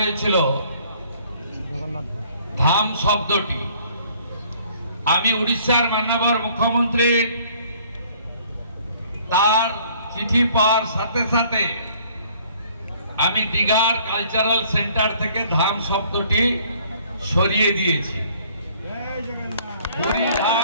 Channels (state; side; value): inverted; both; correlation -0.58